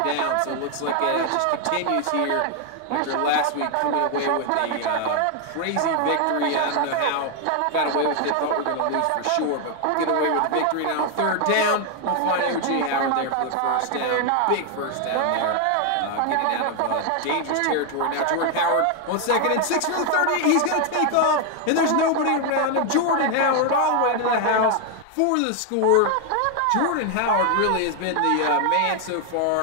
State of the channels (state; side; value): different; both; correlation 0.01